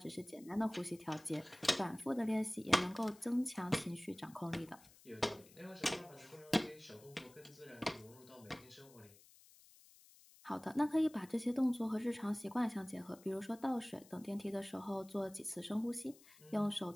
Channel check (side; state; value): left; noise; hiss, 23 dB below the sound